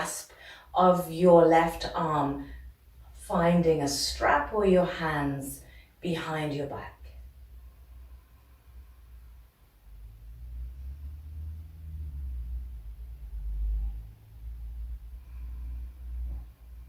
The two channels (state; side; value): identical; both; correlation 1.00